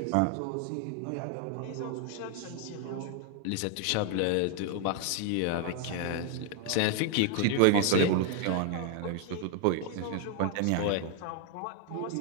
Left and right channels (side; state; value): both; different; correlation 0.00